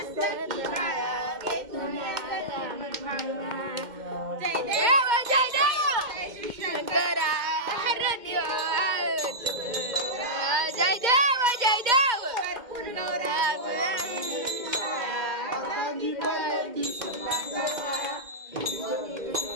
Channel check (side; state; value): left; late; 2.1 ms